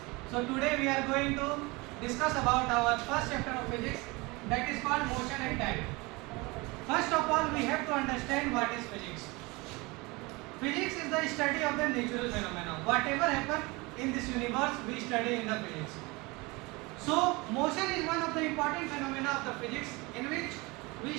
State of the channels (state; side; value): quieter; left; 24.8 dB